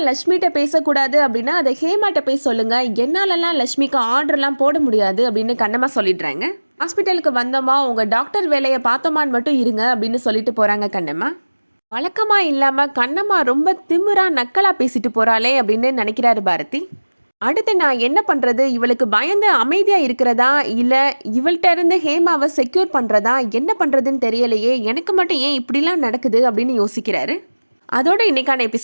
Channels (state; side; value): inverted; both; correlation -1.00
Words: லக்ஷ்மிகிட்ட பேசக்கூடாது அப்படின்னா அதை ஹேமாட்ட போய் சொல்லுங்க, என்னாலலாம் லக்ஷ்மிக்கு ஆர்டர்லாம் போட முடியாது அப்படின்னு கண்ணம்மா சொல்லிடுறாங்க. ஹாஸ்பிட்டலுக்கு வந்தோமா உங்கள் டாக்டர் வேலையை பார்த்தோமான்னு மட்டும் இருங்க அப்படின்னு சொல்லிட்டு போகிறாங்க கண்ணம்மா. வழக்கமாக இல்லாமல் கண்ணம்மா ரொம்ப திமிரா நக்கலாக பேசிட்டு போகிறாளே அப்படின்னு நினைக்கிறாரு பாரதி. அடுத்து நான் என்ன பண்ணுறது, இவளுக்கு பயந்து அமைதியாக இருக்கிறதா இல்லை இவள்கிட்ட இருந்து ஹேமாவை செக்யூர் பண்ணுறதா, என்ன பண்ணுறதுன்னு தெரியலையே, எனக்கு மட்டும் ஏன் இப்படிலாம் நடக்குது அப்படின்னு யோசிக்கிறாரு. அதோட இன்றைக்கான